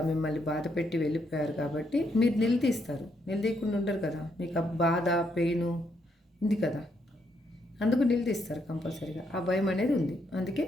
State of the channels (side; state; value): both; normal; correlation 0.76